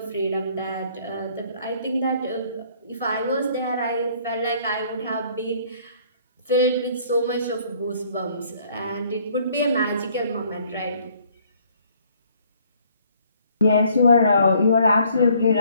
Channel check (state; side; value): inverted; both; correlation -0.61